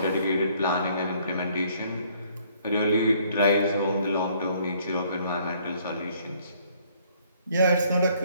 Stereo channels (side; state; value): both; inverted; correlation -0.63